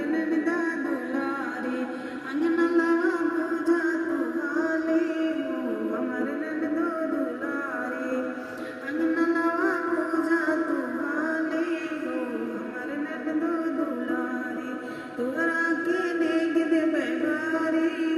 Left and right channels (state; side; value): identical; both; correlation 1.00